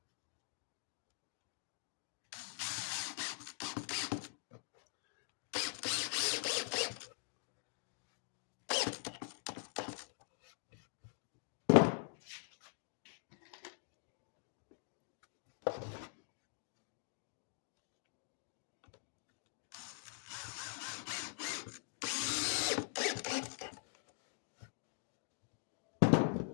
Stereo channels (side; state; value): right; silent; digital silence